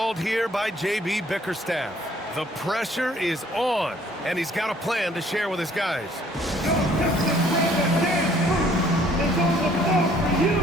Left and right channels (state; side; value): normal; both; correlation 0.60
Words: here by J.B. Bickerstaff. The pressure is on, and he's got a plan to share with his guys. It's on the floor for you.